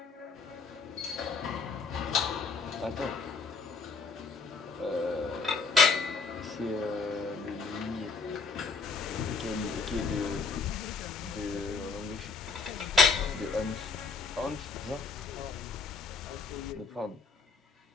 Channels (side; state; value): right; quieter; 4.5 dB